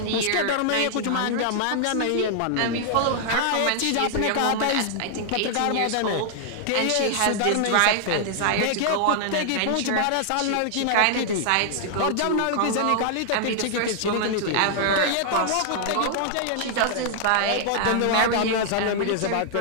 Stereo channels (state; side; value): different; both; correlation -0.01